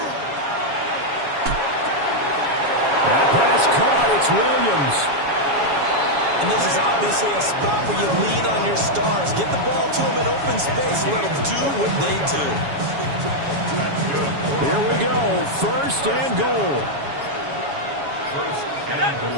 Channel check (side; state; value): left; late; 7.2 ms